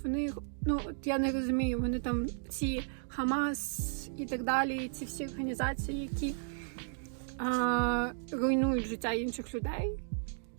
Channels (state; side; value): silent; left; digital silence